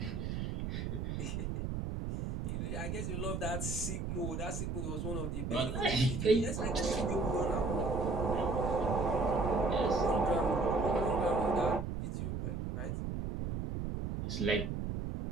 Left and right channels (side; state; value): right; noise; rumble, 3 dB below the sound